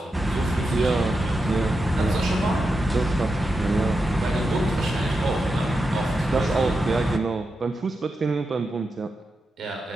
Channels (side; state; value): both; normal; correlation 0.88